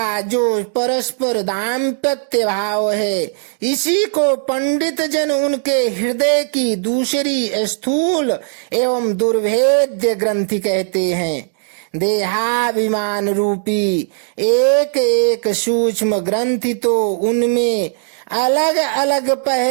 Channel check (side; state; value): left; silent; 68 dB below the other